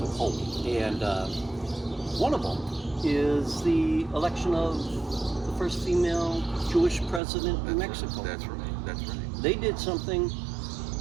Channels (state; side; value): drops out; left; at 7.2 s